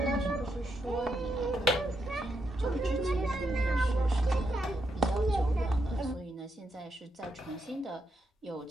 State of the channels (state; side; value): normal; both; correlation 0.81